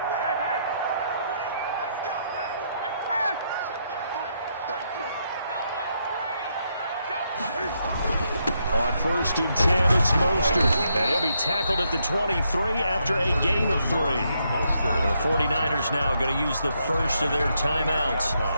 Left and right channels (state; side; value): inverted; both; correlation -0.78